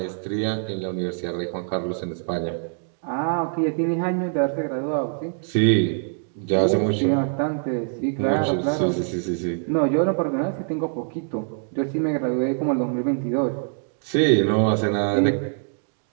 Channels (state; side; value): silent; left; digital silence